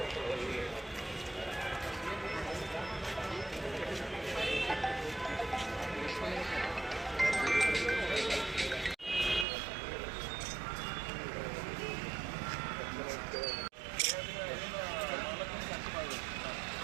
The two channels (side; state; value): left; drops out; at 9.5 s